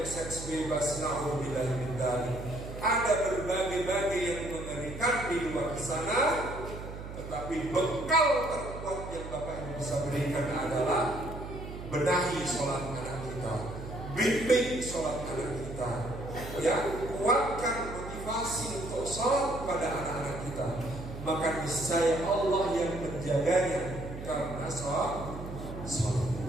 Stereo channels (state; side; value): noise; right; hum, 10 dB below the sound